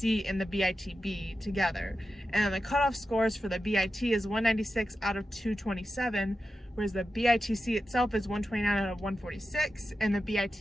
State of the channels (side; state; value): both; normal; correlation 0.91